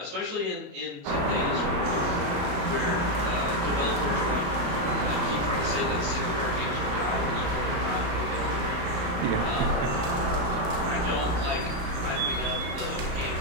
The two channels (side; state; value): left; late; 34 ms